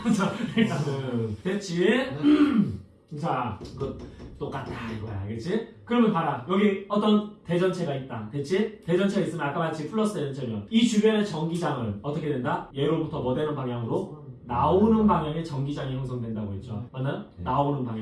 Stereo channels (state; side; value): identical; both; correlation 1.00